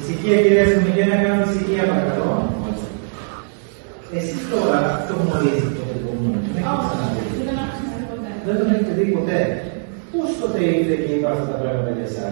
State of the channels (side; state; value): left; silent; digital silence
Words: κυρία Αστυνομική, να κάνουμε ησυχία, παρακαλώ. Εσείς τώρα αυτό γνωρίζετε το παιδί. Δεν τον έχετε δει ποτέ. Πώς τότε ήρθε και είπα αυτά τα πράγματα για